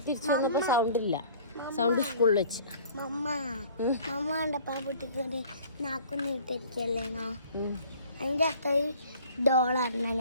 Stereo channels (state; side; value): inverted; both; correlation -0.50